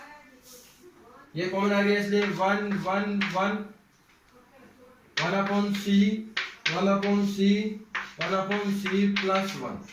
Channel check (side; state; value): both; identical; correlation 1.00